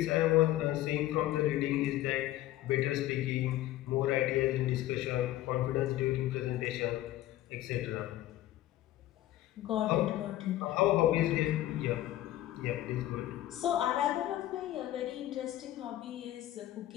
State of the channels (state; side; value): quieter; right; 14.5 dB